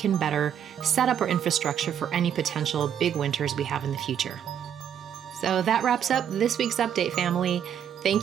better set up our infrastructure for any potential big winters we have in the future. So that wraps up this week's update, family.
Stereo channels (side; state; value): left; quieter; 9.0 dB